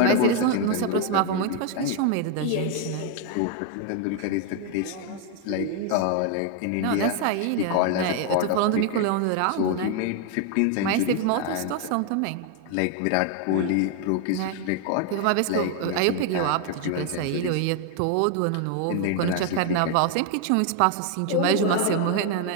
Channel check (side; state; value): both; different; correlation 0.01